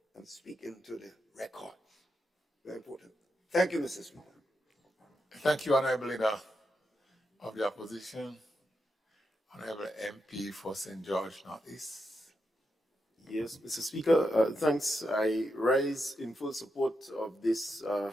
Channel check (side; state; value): both; normal; correlation 0.85